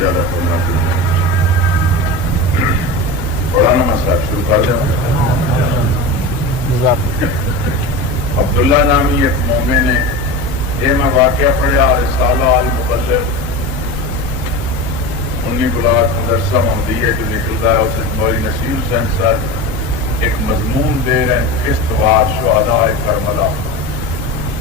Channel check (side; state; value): both; normal; correlation 0.27